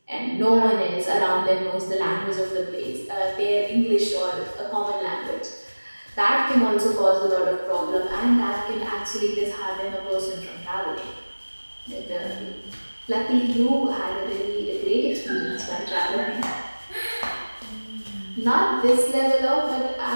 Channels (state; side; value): inverted; both; correlation -1.00